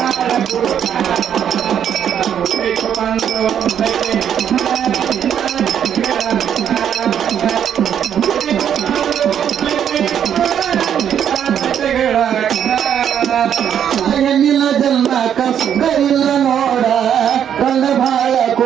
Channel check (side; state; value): left; quieter; 9.0 dB